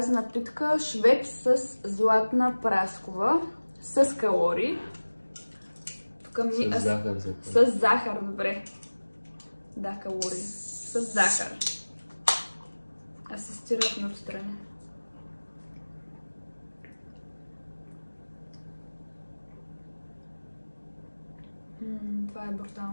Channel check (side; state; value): both; inverted; correlation -1.00